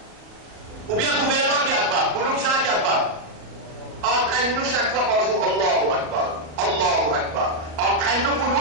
Ou bien gouvernement qui Akbar. Pour nous, c'est un qui Akbar. Entraîne-nous 5 fois par jour, Allahu Akbar. Allahu Akbar. Entraîne-nous pour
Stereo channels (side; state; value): left; late; 37 ms